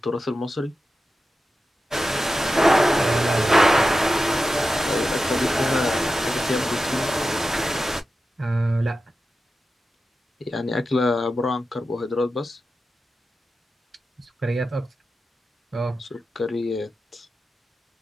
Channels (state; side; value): normal; both; correlation 0.92